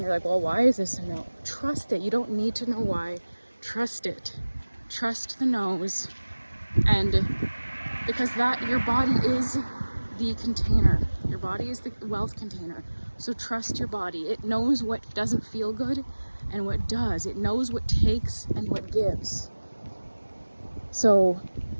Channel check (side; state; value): both; inverted; correlation -1.00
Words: You're like, well, why is this a no? Trust it. You don't need to know why. Trust it. Trust the no's. And because your body is the container. Your body is the wealth container. So trust your body. It knows what doesn't feel good and what does. It knows what takes and what gives. So